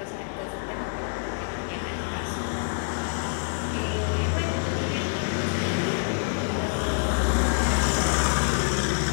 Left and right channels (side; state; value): right; silent; digital silence